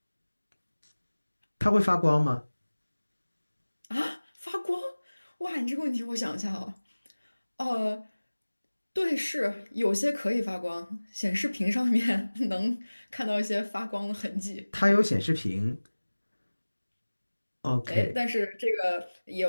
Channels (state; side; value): inverted; both; correlation -1.00